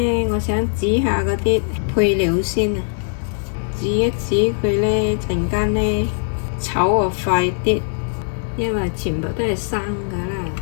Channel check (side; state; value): right; silent; digital silence